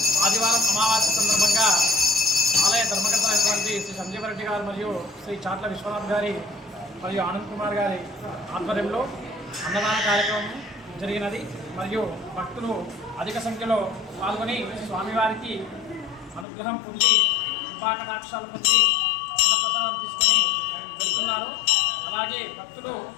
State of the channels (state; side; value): drops out; right; at 16.4 s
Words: ఆదివారం అమావాస్య సందర్భంగా ఆలయ ధర్మకర్త అయినటువంటి శ్రీ సంజీవరెడ్డి గారు మరియు శ్రీ చాట్ల విశ్వనాథ్ గారి మరియు ఆనంద్ కుమార్ గారి ఆధ్వర్యంలో అన్నదాన కార్యక్రమం జరిగినది. మరియు భక్తులు అధిక సంఖ్యలో పాల్గొని స్వామివారికి అనుగ్రహం పొంది కృపాకటాక్షాలు పొంది అన్నప్రసాదం తీసుకొని వెళ్తున్నారు. అలాగే భక్తులు